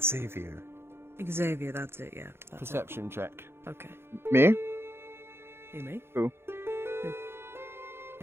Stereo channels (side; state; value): left; late; 0.12 ms